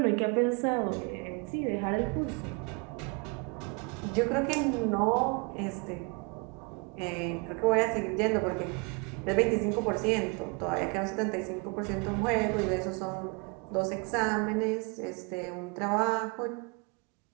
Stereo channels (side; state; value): left; quieter; 31.6 dB